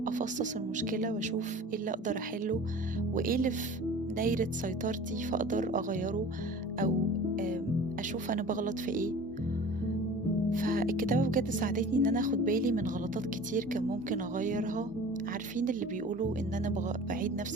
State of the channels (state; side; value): normal; both; correlation 0.41